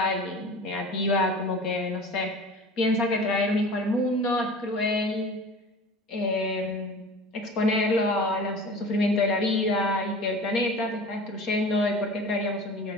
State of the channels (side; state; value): both; normal; correlation 0.39